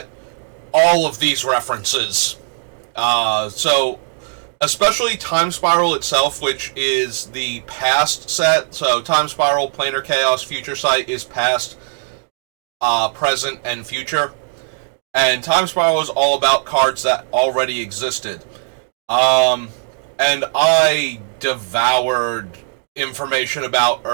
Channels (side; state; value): left; silent; digital silence